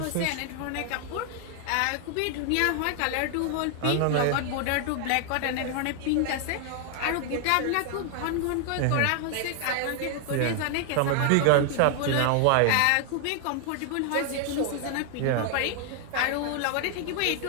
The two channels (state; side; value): different; both; correlation 0.00